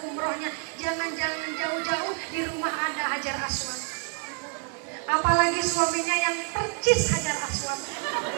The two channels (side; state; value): left; quieter; 36.9 dB